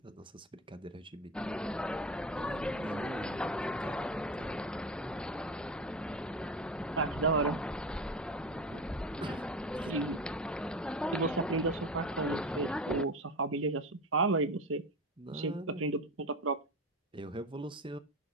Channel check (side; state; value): both; normal; correlation 0.26